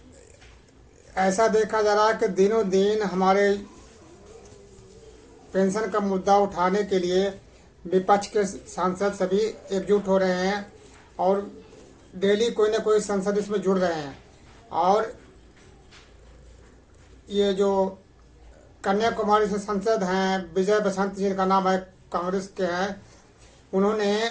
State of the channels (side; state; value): both; identical; correlation 1.00